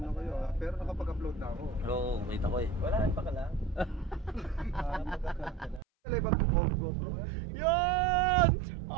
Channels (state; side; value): drops out; left; at 5.8 s